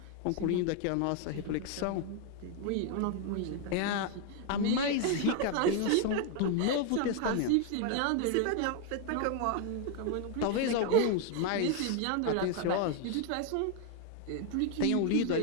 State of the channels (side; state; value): both; different; correlation 0.01